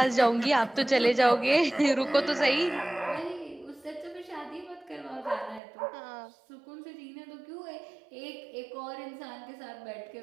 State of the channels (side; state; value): left; drops out; at 5.6 s